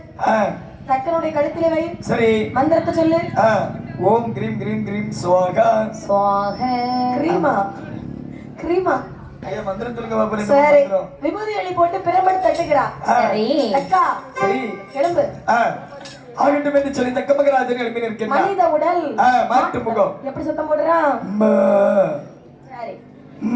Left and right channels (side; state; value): both; identical; correlation 1.00